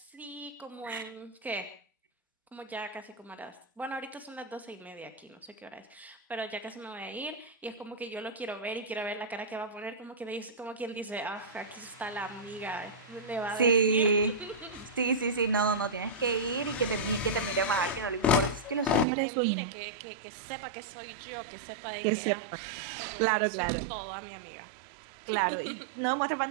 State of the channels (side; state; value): left; drops out; at 19.1 s